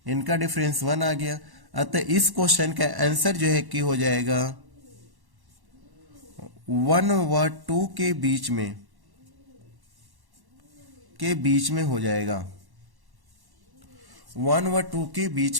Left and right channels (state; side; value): late; left; 1.1 ms